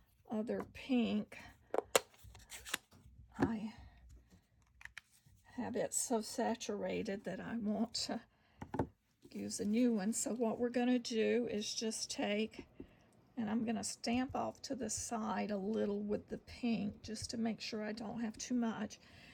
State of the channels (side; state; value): both; identical; correlation 1.00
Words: other pink, I have it so saturated that I want to use a new one. So what we're going to do is just take, and I'm going to stamp off to the side a little with the pink just to make sure I don't have too much.